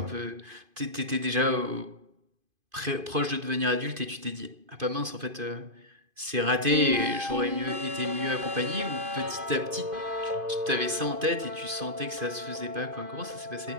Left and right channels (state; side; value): late; left; 2.5 ms